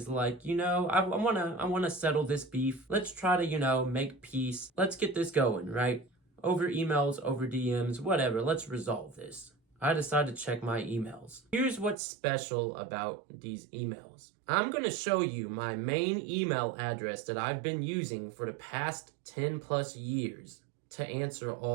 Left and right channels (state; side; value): drops out; left; at 12.0 s